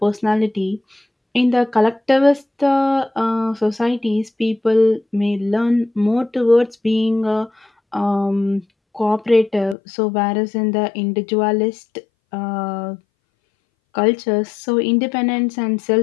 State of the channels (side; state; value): right; drops out; at 9.8 s